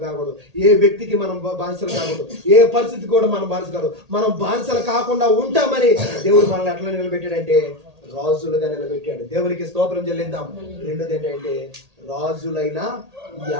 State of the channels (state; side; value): late; left; 1.8 ms